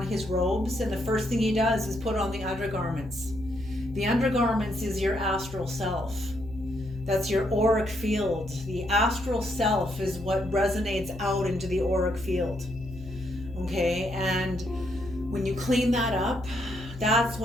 his robes. And the first thing he does is put on the undergarments. The undergarments is your astral self. That's your auric field. The astral self is what resonates out into the auric field. Okay, and when you clean that up, that's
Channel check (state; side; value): noise; left; hum, 14 dB below the sound